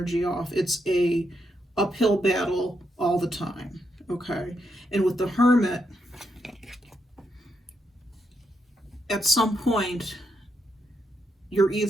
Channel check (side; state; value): both; normal; correlation 0.80